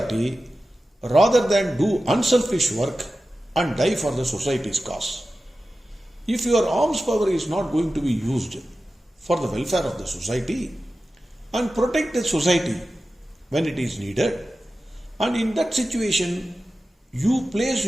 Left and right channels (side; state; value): both; normal; correlation 0.94